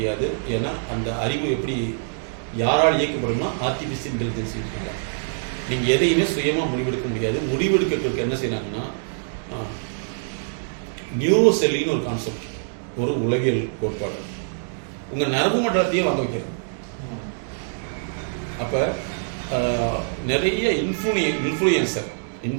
ஏன்னா அந்த அறிவு எப்படி யாரால் இயக்கப்படும்னா ஆர்டிஃபிஷியல் இன்டெலிஜென்ஸ் இருக்காங்க. நீங்கள் எதையுமே சுயமாக முடிவெடுக்க முடியாது. முடிவெடுக்கிறதுக்கு என்ன செய்யறாங்கன்னா நியூரோ செல்லின்னு ஒரு கான்செப்ட், ஒரு உலகியல் கோட்பாடு, உங்கள் நரம்பு மண்டலத்தையே வாங்க வைக்கிறது. அப்போ நிறைய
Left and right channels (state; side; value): silent; left; digital silence